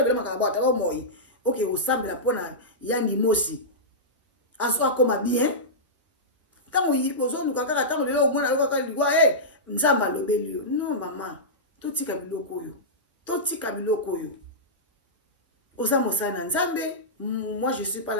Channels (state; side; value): normal; both; correlation -0.14